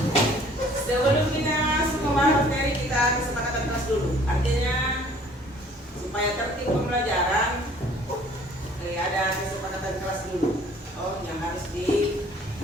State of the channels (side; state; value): both; normal; correlation 0.54